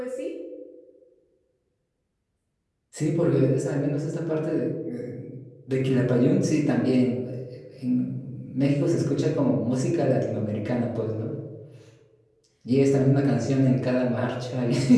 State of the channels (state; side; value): identical; both; correlation 1.00